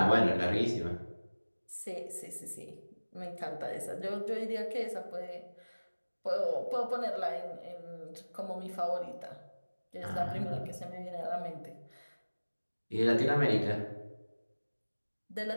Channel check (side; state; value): both; inverted; correlation -1.00